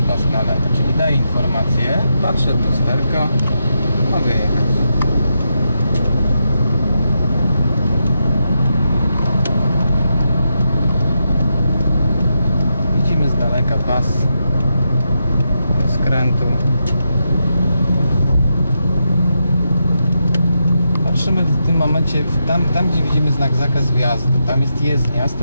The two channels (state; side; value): inverted; both; correlation -0.85